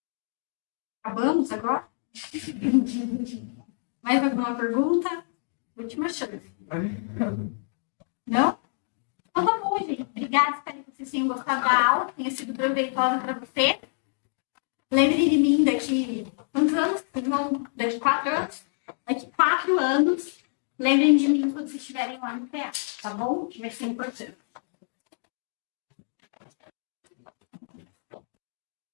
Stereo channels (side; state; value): right; silent; digital silence